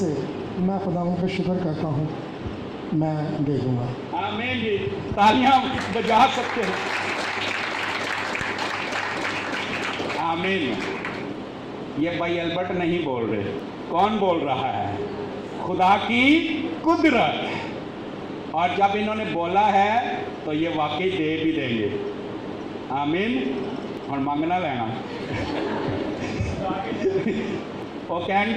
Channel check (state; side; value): identical; both; correlation 1.00